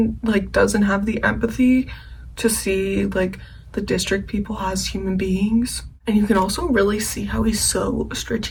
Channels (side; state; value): both; identical; correlation 1.00